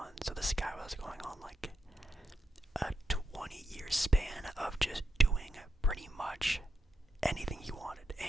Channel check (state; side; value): normal; both; correlation 0.83